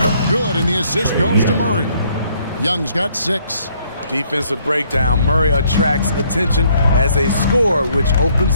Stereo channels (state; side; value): inverted; both; correlation -0.66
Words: Good, and the assist goes to Murray. Young's got 6. Defensive breakdown. Murray attracts attention as a scorer, which